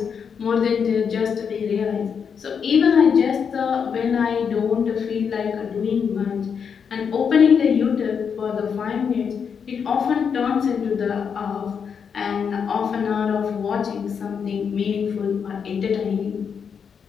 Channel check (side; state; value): right; quieter; 6.8 dB